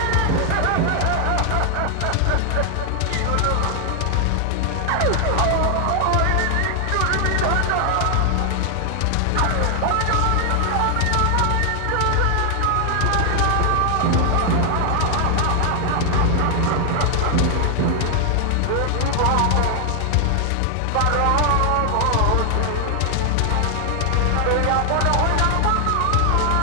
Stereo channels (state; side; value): different; both; correlation 0.00